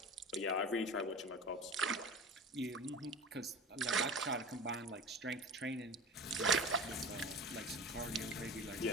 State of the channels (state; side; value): normal; both; correlation 0.32